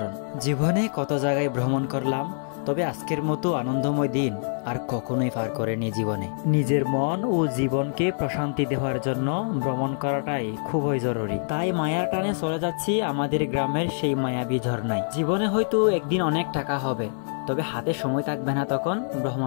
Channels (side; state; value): right; silent; digital silence